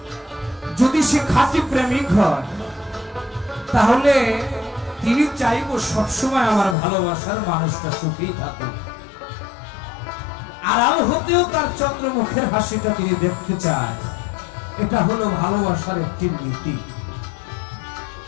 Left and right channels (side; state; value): right; drops out; at 6.8 s